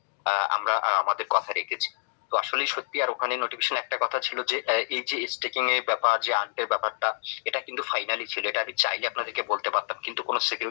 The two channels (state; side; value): silent; right; digital silence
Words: আমরা আমাদের কথা রেখেছি। তো আসলেই সত্যি। আর ওখানে নোটিফিকেশন একটা কথা ছিল যে এই যে স্টেকিং এর ব্যাপার, যে আন্টের ব্যাপারটা, এটা কিন্তু ফাইনালি ছিল। এটা আমি চাইলে আপনাদেরকে বলতে পারতাম, কিন্তু কোনো